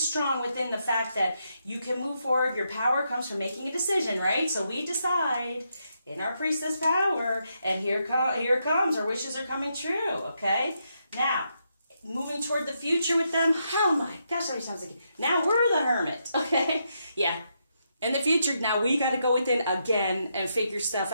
within the fact that you can move forward. Your power comes from making a decision, right? So we decide in our priestess power, and here it comes. Our wishes are coming true, okay? Now, moving toward the future with them. Oh my gosh, how many times again? Now we're the hermit, okay? Yeah. In the future, now we got to go within again and figure stuff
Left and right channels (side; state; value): both; inverted; correlation -0.81